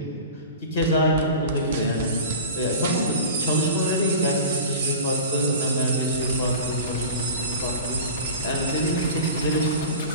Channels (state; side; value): inverted; both; correlation -0.34